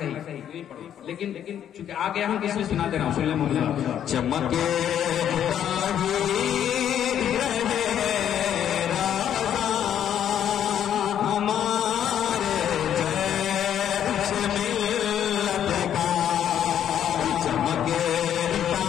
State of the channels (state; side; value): quieter; right; 9.9 dB